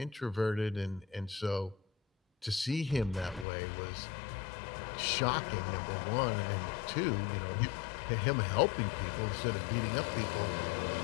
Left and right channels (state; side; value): drops out; right; at 3.5 s